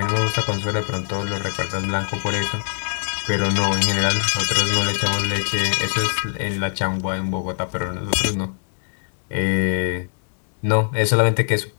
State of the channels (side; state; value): right; silent; digital silence